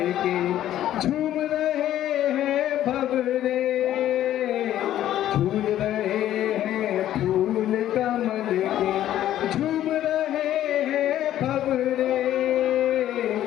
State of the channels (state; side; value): quieter; right; 12.3 dB